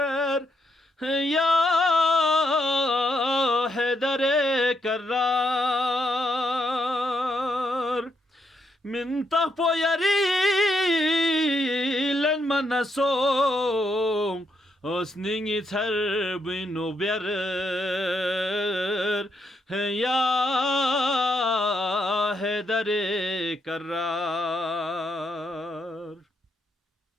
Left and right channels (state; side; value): normal; both; correlation 0.78